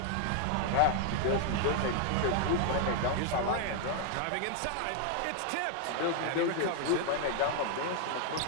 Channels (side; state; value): both; different; correlation 0.00